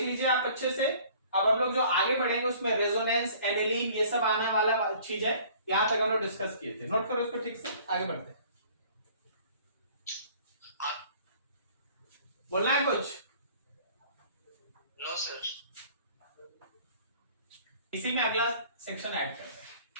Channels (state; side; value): inverted; both; correlation -0.52